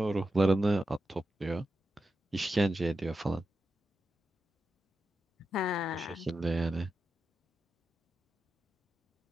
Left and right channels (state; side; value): normal; both; correlation 0.89